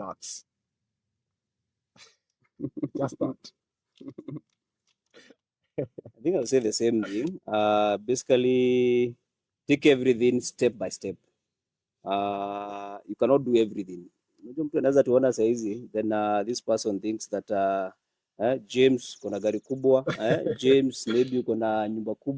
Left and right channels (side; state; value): both; identical; correlation 1.00